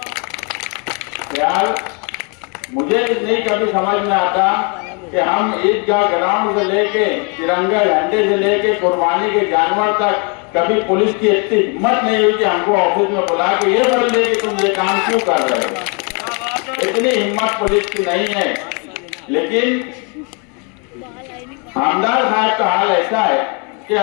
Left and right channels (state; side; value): quieter; right; 35.3 dB